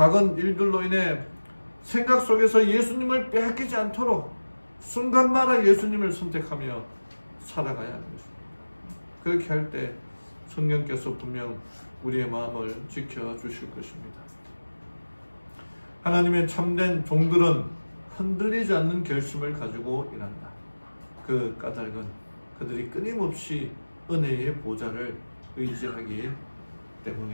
일들로 인해 생각 속에서 예수님을 빼앗기지 않도록 순간마다 예수님을 선택하며 살아가야 하는 것입니다. 그렇게 할 때 성령께서 분명 우리의 마음을 지켜주실 것입니다. 하나님의 참된 종들은 흔들리지 않는 결심을 가지고 일한다. 그 까닭은 그들이 끊임없이 은혜의 보좌를 의지하기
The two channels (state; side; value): inverted; both; correlation -1.00